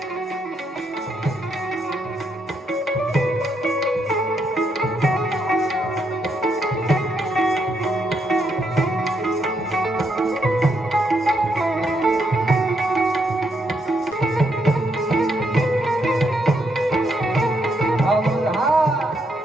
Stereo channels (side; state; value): both; normal; correlation 0.77